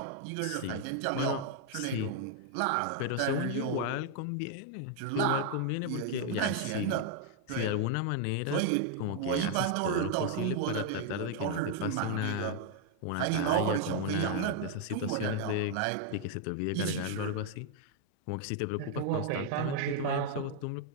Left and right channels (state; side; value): different; both; correlation 0.00